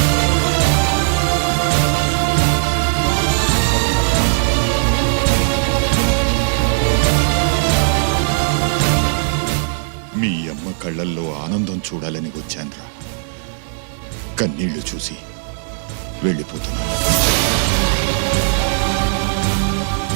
మీ అమ్మ కళ్ళల్లో ఆనందం చూడాలని వచ్చాన్రా. కన్నీళ్లు చూసి వెళ్ళిపోతున్నాను.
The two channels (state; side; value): silent; left; digital silence